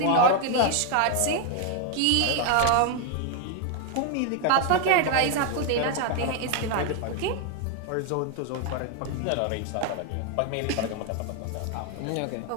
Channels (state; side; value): different; both; correlation 0.01